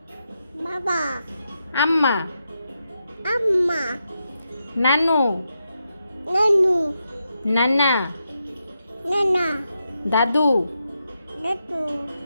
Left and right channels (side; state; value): both; inverted; correlation -0.85